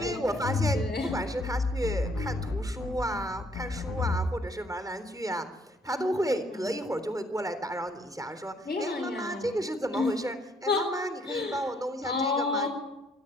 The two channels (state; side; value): normal; both; correlation 0.66